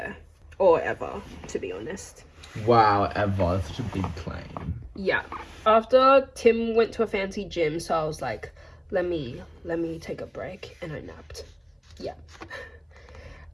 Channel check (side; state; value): both; identical; correlation 1.00